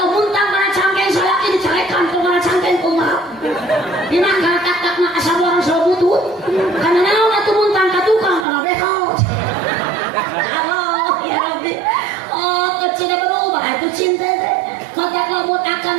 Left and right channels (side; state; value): left; drops out; at 8.5 s